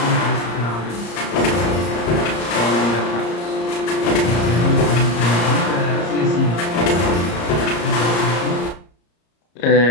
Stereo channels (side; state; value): right; late; 34 ms